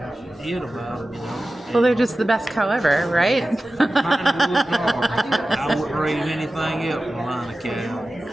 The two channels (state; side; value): normal; both; correlation 0.95